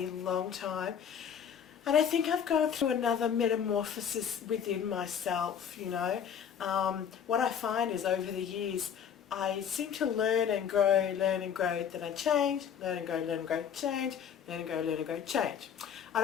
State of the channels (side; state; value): right; quieter; 8.1 dB